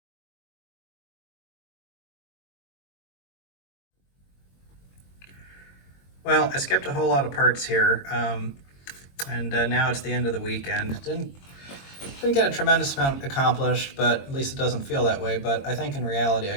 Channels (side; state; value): right; late; 22 ms